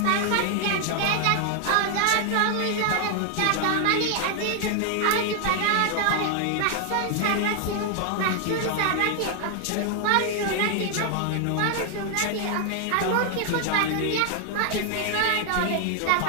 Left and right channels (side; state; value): both; different; correlation 0.00